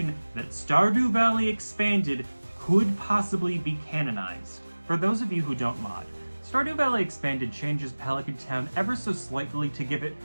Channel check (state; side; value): inverted; both; correlation -1.00